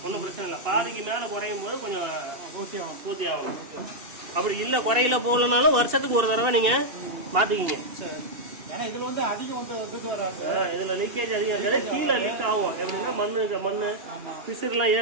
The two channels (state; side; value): late; left; 2.7 ms